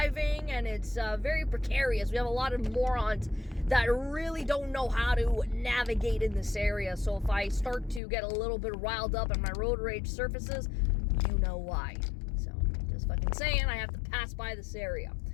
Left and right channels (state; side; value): drops out; right; at 8.0 s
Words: and it's very precarious. We have a lot of morons that really don't know how to navigate in this area. So if I start to get a little bit riled up and my road rage surfaces, you know why. So just fucking saying, I have to pass by this area.